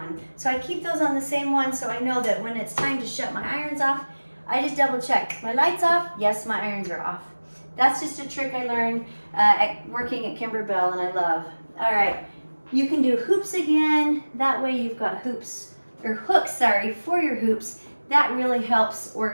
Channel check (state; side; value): inverted; both; correlation -1.00